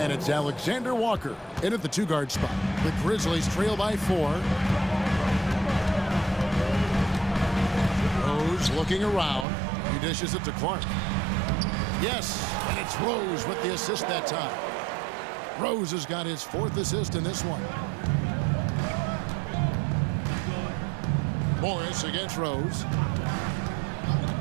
it's Alexander Walker in at the 2-guard spot. The Grizzlies trail by 4. Rose looking around. He dishes it to Clark. Yes, and it's Rose with the assist that time. Rose has got his 4th assist in this one. Morris against Rose.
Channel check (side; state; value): left; drops out; at 9.5 s